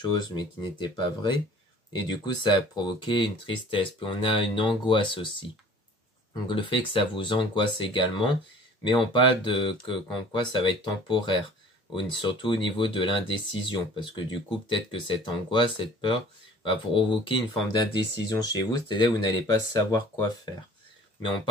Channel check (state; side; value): normal; both; correlation 0.48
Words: mais qui n'était pas vrai. Et du coup, ça a provoqué une tristesse. Puis on a une angoisse aussi. Donc le fait que ça vous angoisse également, mais on parle de qu'en quoi ça va être temporaire, surtout au niveau de l'indécision, parce que du coup, peut-être que cette angoisse, cette peur, va provoquer une forme d'indécision chez vous, c'est-à-dire que vous n'allez pas savoir quoi faire. Mais on